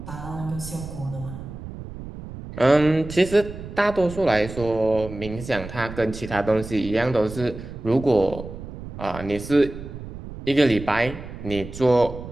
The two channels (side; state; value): right; noise; rumble, 11 dB below the sound